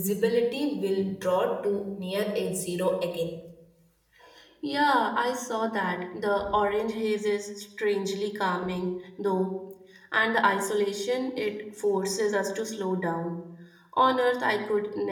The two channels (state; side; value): identical; both; correlation 1.00